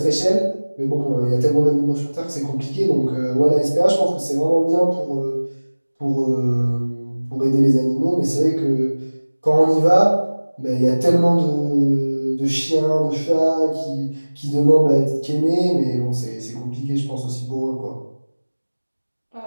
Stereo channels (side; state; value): both; inverted; correlation -1.00